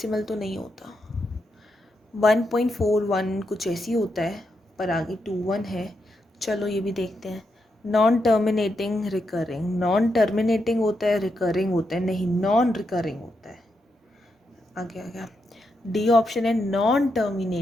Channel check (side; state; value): both; normal; correlation 0.83